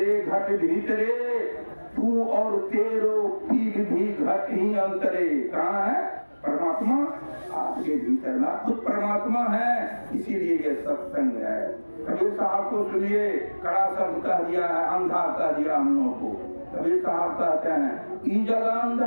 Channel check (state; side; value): inverted; both; correlation -1.00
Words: घट भीतरे, तू और तेरो पीग भी घट ही अंतरे। कहाँ है परमात्मा? आपके भीतर ना खुद परमात्मा है, इसीलिए ये सत्संग है। कबीर साहब को सुनिए, कड़ा शब्द कह दिया है, अंधा कह दिया हम लोगों को। कबीर साहब कहते हैं ई जगह